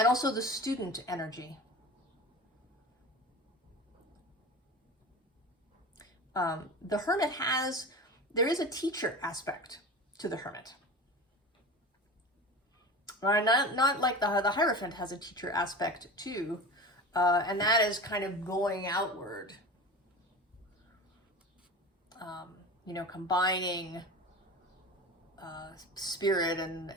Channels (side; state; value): both; normal; correlation 0.31